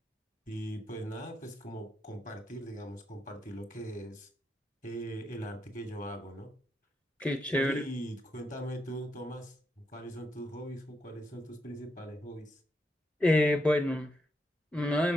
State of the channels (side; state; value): both; normal; correlation 0.81